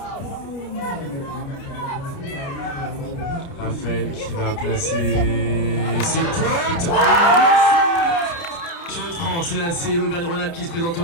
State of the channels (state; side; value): late; right; 29 ms